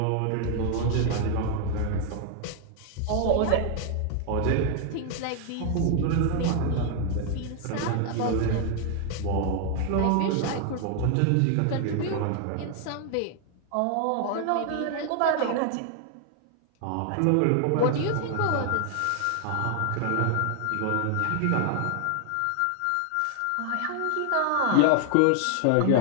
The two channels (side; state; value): both; different; correlation 0.00